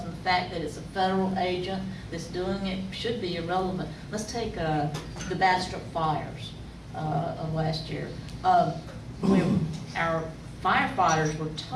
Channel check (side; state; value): both; identical; correlation 1.00